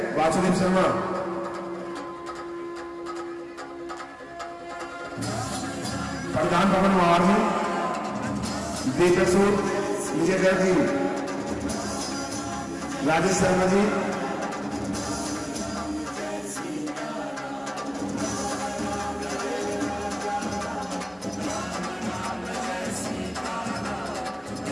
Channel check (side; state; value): both; identical; correlation 1.00